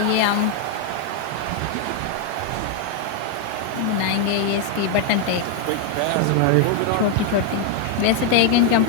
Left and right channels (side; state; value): both; different; correlation 0.00